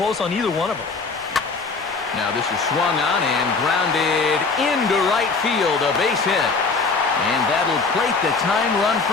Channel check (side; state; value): right; quieter; 4.3 dB